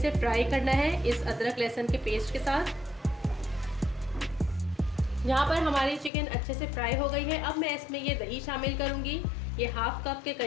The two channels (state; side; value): drops out; right; at 6.1 s